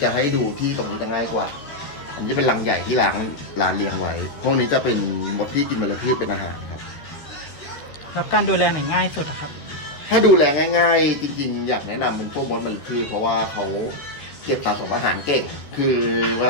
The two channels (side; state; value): right; late; 13 ms